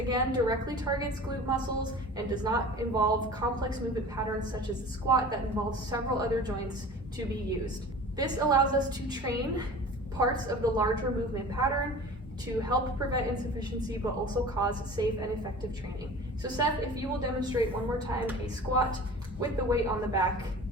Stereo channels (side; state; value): both; normal; correlation 0.40